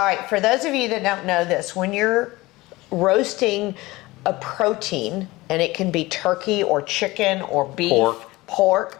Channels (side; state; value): right; quieter; 20.3 dB